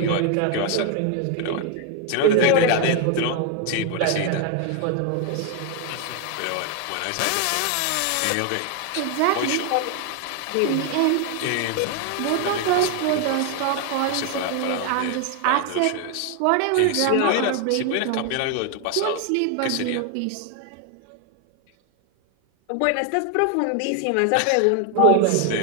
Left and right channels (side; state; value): both; different; correlation 0.01